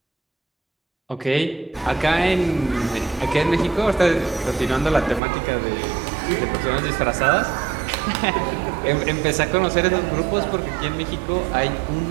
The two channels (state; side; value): drops out; left; at 5.2 s